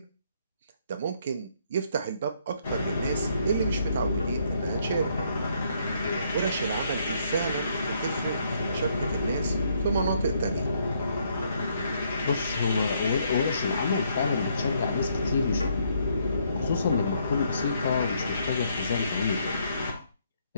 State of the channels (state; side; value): inverted; both; correlation -0.71